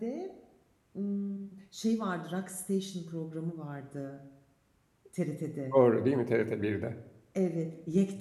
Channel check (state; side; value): identical; both; correlation 1.00